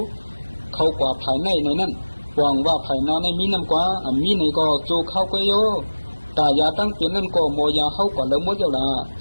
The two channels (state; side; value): inverted; both; correlation -1.00